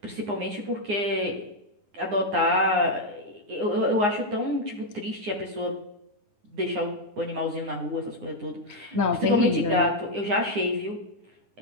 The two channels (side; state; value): left; late; 9.7 ms